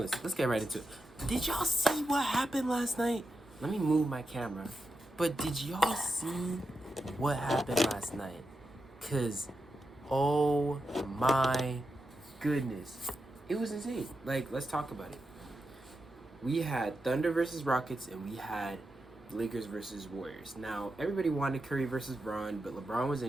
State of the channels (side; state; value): both; normal; correlation 0.88